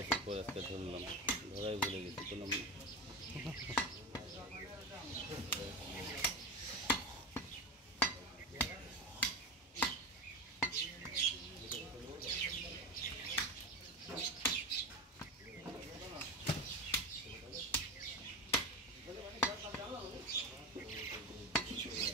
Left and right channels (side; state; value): both; normal; correlation 0.22